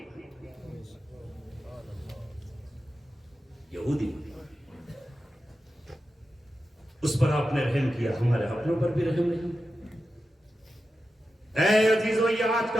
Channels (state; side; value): normal; both; correlation 0.91